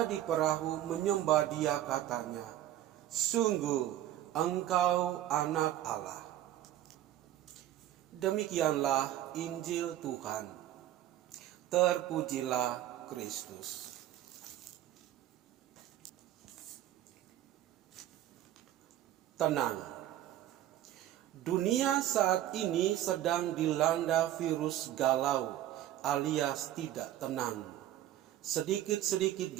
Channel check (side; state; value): left; quieter; 12.9 dB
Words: di perahu menyembah dia, katanya, "Sungguh Engkau anak Allah." Demikianlah Injil Tuhan. Terpujilah Kristus. Tenang. Dunia saat ini sedang dilanda virus galau alias tidak tenang. Sedikit-sedikit